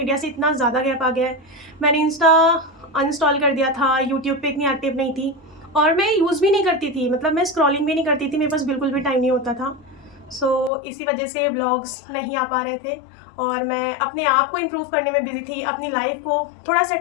से इतना ज़्यादा गैप आ गया है। मैंने इंस्टा अनइंस्टॉल कर दिया था, यूट्यूब पे इतनी एक्टिव नहीं थी और मैं यूज़ भी नहीं करती थी, मतलब मैं स्क्रॉलिंग भी नहीं करती थी, मेरे पास बिल्कुल भी टाइम नहीं होता था। इसी वजह से व्लॉग्स नहीं आ पा रहे थे और मैं अपने आप को इम्प्रूव करने में बिज़ी थी, अपनी लाइफ को थोड़ा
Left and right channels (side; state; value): right; drops out; at 10.7 s